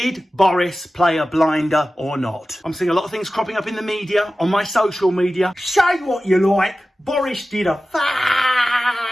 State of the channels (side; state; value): both; normal; correlation 0.95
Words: Boris play a blinder or not? I'm seeing a lot of things cropping up in the media, on my social media. Say what you like, Boris did a fucking